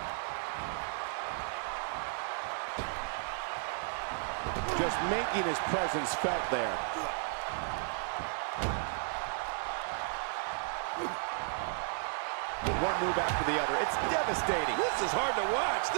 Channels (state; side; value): silent; left; digital silence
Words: Just making his presence felt there. One move after the other. It's devastating. This is hard to watch.